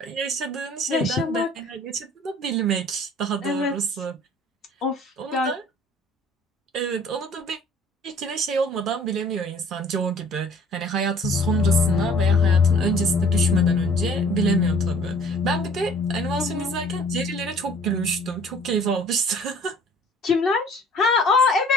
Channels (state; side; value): normal; both; correlation 0.53